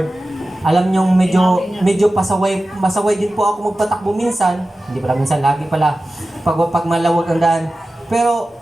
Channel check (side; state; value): both; normal; correlation 0.95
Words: Alam nyo, medyo masaway din po ako magpatakbo minsan. Hindi pala minsan, lagi pala. Pag malawag ang daan. Pero,